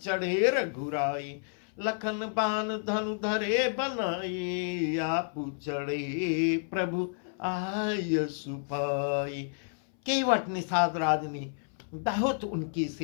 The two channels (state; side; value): silent; right; 58 dB below the other